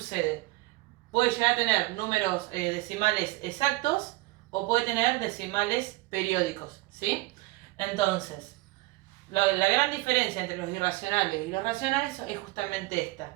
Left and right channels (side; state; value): left; quieter; 20.8 dB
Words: Puede llegar a tener números decimales exactos o puede tener decimales periódicos, ¿sí? Entonces, la gran diferencia entre los irracionales y los racionales es justamente esta,